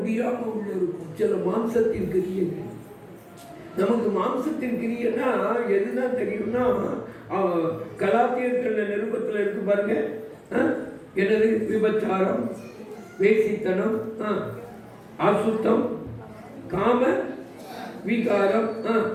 உள்ள இருக்கும். சில மாம்சத்தின் கிரியைகள். நமக்கு மாம்சத்தின் கிரியைன்னா எதுதான் தெரியும்னா, கலாத்தியர்கள் நிருபத்தில் இருக்கு பாருங்க. என்னது? விபச்சாரம், வேசித்தனம், அசுத்தம், காம விகாரம்,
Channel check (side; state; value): both; identical; correlation 1.00